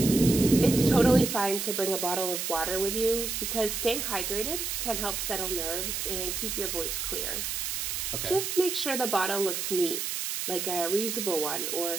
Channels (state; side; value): noise; right; hiss, 3 dB below the sound